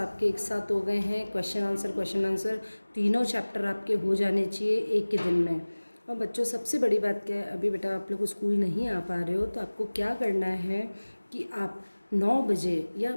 एक साथ हो गए हैं, क्वेश्चन आंसर, तीनों चैप्टर आपके हो जाने चाहिए एक ही दिन में। और बच्चों सबसे बड़ी बात क्या है, अभी बेटा आप लोग स्कूल नहीं आ पा रहे हो तो आपको क्या करना है कि आप 9 बजे या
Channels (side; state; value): both; inverted; correlation -1.00